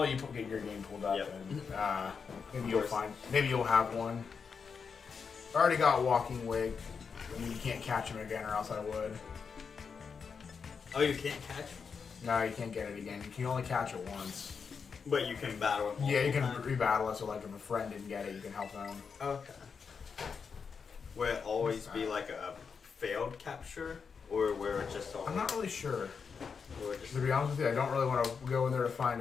you get your game pulled up, Yep. and maybe you'll have one. I already got Walking Wig. I mean, you can't catch him again, or else I would. Oh, you can't catch him? No, you can't get it again. You can only catch it once. But you can battle him. Yeah, you can rebattle it. So, like, if a friend didn't get it, you can help them. Okay. Will it always be like a failed capture, or where it just always? I'm not really sure. Just... To be honest with you, I don't really want to go in there to find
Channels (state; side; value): quieter; right; 5.8 dB